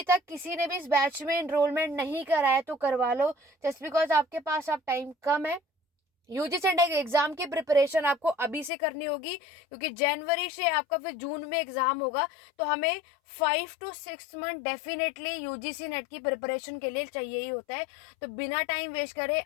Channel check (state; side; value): drops out; right; at 8.7 s